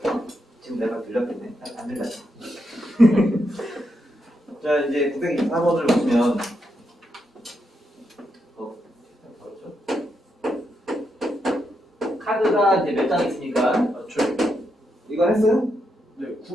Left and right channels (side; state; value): both; normal; correlation 0.82